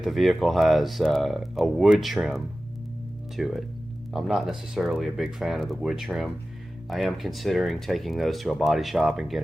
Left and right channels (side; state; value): both; normal; correlation 0.95